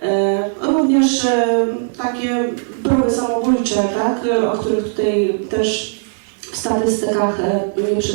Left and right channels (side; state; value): left; silent; 64 dB below the other